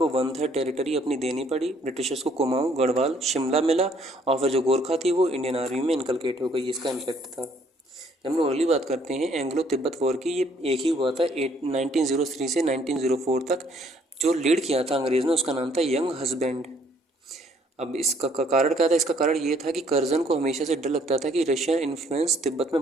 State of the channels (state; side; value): normal; both; correlation 0.64